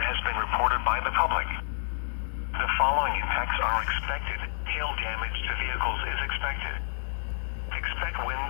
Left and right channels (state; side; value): silent; right; digital silence